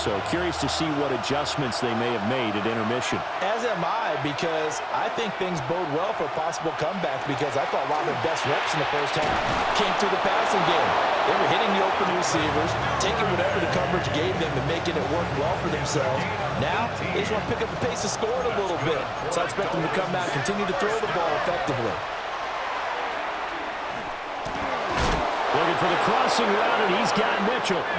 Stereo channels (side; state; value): both; identical; correlation 1.00